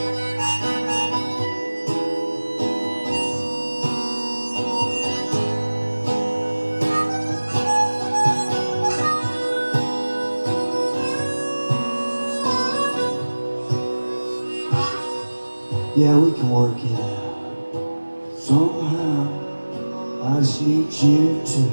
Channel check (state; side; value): inverted; both; correlation -1.00